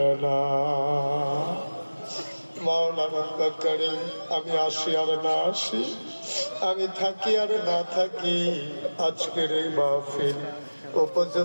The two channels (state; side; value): inverted; both; correlation -1.00